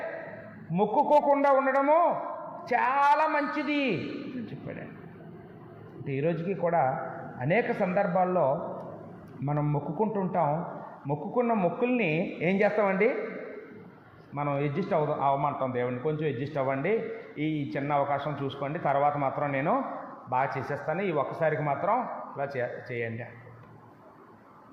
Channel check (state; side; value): identical; both; correlation 1.00